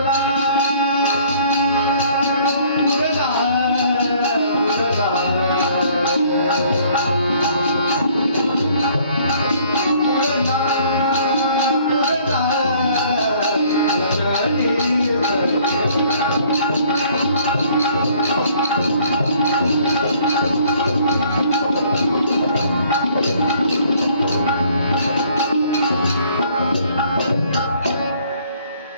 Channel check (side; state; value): both; inverted; correlation -0.59